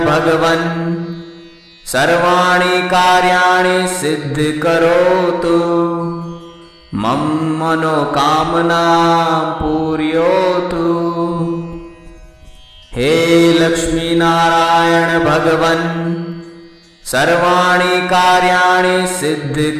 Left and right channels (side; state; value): both; identical; correlation 1.00